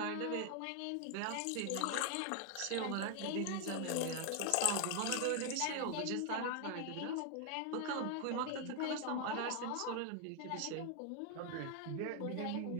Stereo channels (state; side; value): different; both; correlation 0.00